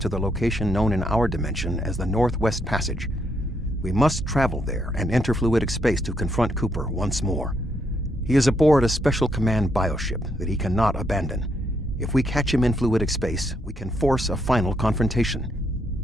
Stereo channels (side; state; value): both; normal; correlation 0.76